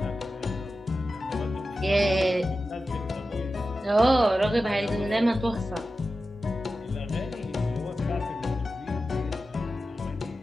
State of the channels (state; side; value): normal; both; correlation 0.93